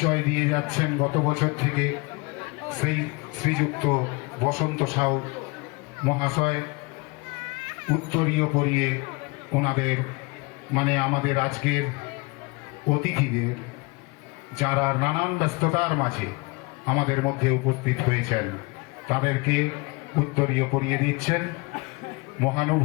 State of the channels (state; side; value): quieter; right; 26.9 dB